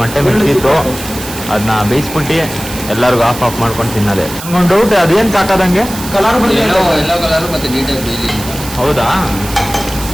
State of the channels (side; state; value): right; noise; hiss, 11 dB below the sound